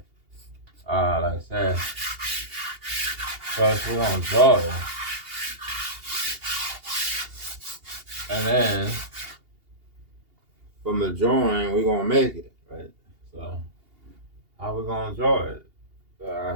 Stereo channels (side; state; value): left; late; 2.8 ms